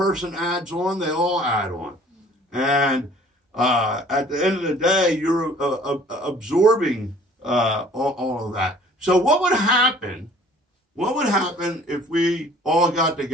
adds on, they all add on. And at the end of the day, you're absorbing all of that. So what would happen? What would happen if we all got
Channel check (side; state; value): both; normal; correlation 0.52